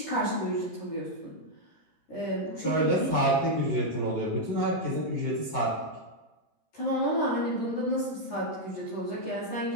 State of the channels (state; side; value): late; right; 13 ms